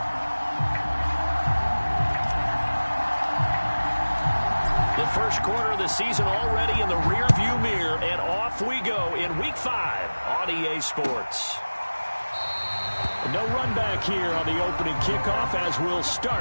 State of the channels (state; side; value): inverted; both; correlation -1.00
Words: The first quarter of the season already in the rearview mirror, and off we go in Week 5 on EA Sports. No run back here on the opening kickoff as we'll